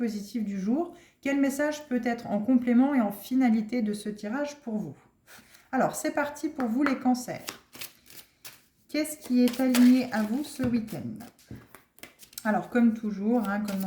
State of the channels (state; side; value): identical; both; correlation 1.00